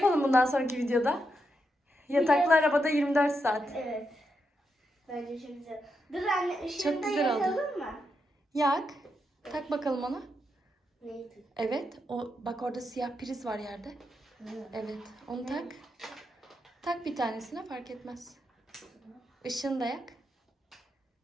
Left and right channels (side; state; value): both; normal; correlation 0.83